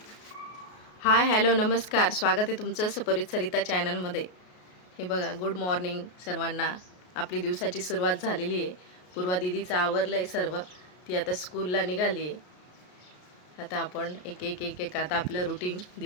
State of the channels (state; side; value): late; right; 33 ms